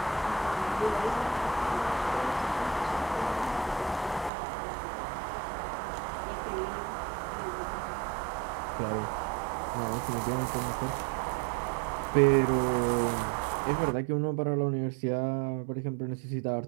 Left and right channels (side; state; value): left; drops out; at 4.3 s